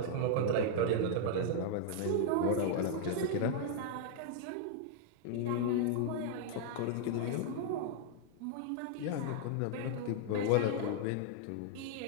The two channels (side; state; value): both; different; correlation -0.01